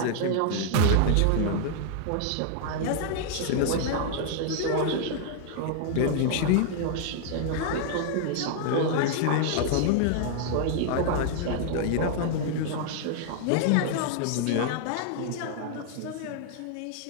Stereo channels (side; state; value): both; different; correlation 0.00